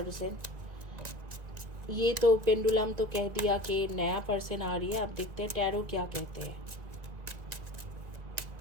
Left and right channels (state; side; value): late; left; 1.9 ms